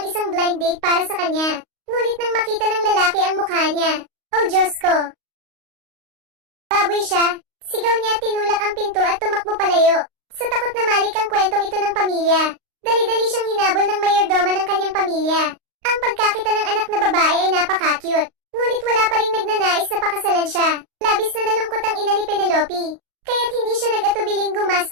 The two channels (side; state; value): left; late; 38 ms